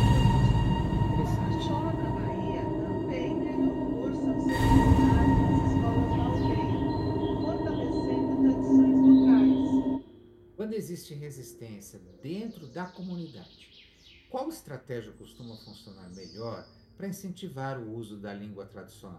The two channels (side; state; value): both; identical; correlation 1.00